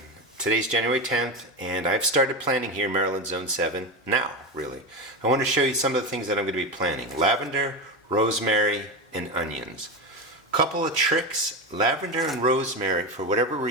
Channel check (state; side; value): normal; both; correlation 0.18